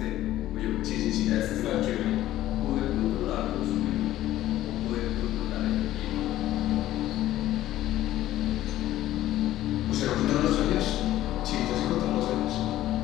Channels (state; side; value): quieter; right; 14.2 dB